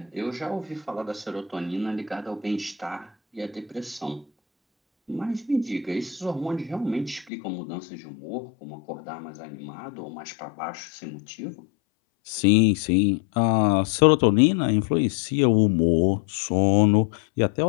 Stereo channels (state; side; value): drops out; right; at 7.3 s